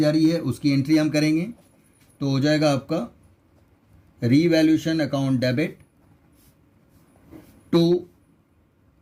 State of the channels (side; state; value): both; identical; correlation 1.00